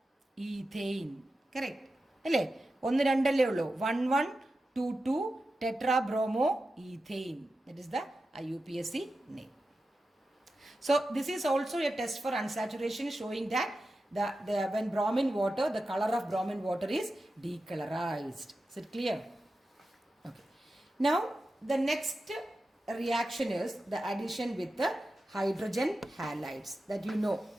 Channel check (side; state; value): both; normal; correlation 0.92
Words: ethane. Correct അല്ലേ? 1 2 അല്ലേ ഉള്ളൂ. 1122 tetrabromo ethane. That is the IUPAC name. So this is also a test for unsaturation, showing that when bromine water, the color of bromine water is decolorized. Is it clear? Okay. Now the next reaction is the addition with the hydrogen halides, that you know